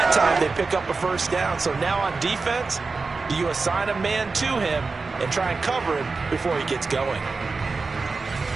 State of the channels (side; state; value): left; quieter; 4.2 dB